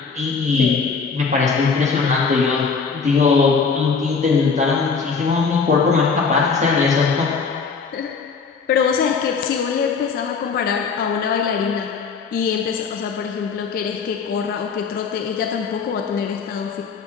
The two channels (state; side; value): quieter; right; 5.2 dB